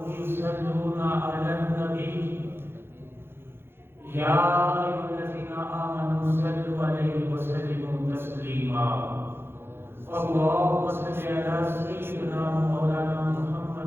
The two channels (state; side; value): late; left; 0.11 ms